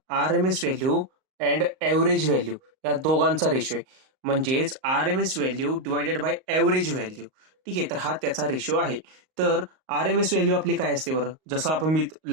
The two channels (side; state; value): left; late; 38 ms